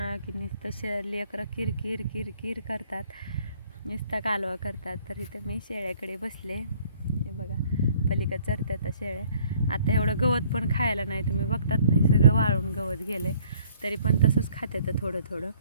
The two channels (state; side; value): inverted; both; correlation -0.59